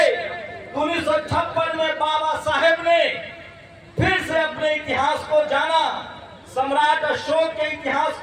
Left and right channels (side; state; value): both; identical; correlation 1.00